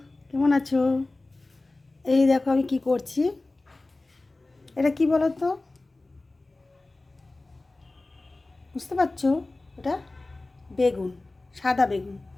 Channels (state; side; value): quieter; right; 3.1 dB